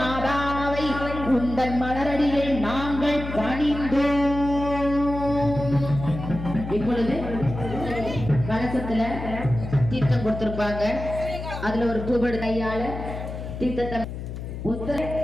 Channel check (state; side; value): noise; left; hum, 8 dB below the sound